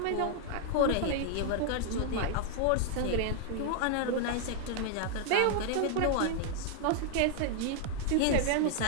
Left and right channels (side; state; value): both; different; correlation 0.00